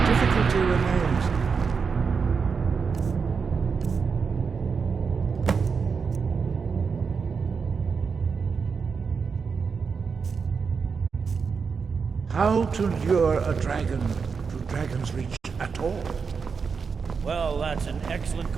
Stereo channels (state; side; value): quieter; left; 5.5 dB